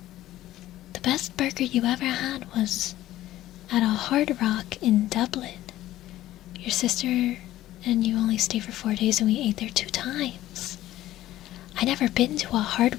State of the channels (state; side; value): quieter; right; 14.5 dB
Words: The best burger you ever had was at a Hard Rock in Dublin. Your sister and you only stayed for 4 days and we ate there 2 times. I never been to a